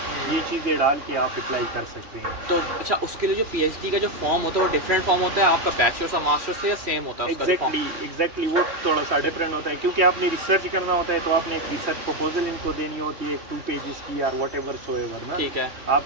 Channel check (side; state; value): left; late; 3.1 ms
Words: ये चीज़ें डाल के आप अप्लाई कर सकते हैं। तो अच्छा, उसके लिए जो पीएचडी का जो फॉर्म होता है वो डिफरेंट फॉर्म होता है आपका बैचलर्स और मास्टर्स से, या सेम होता है? एग्जैक्टली वो थोड़ा सा डिफरेंट होता है, क्योंकि आपने रिसर्च करना होता है, तो आपने एक रिसर्च प्रपोजल इनको देनी होती है, 2 पेजेस की और वट एवर सो एवर ना। ठीक है,